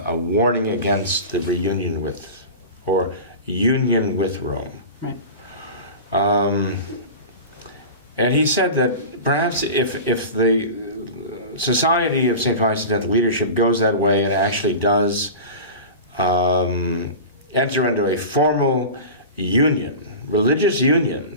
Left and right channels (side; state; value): both; inverted; correlation -0.32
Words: warning against the reunion with, or union with Rome. Right. And he said that perhaps if the Society of St. Pius X leadership goes that way and actually does enter into a formal union, religious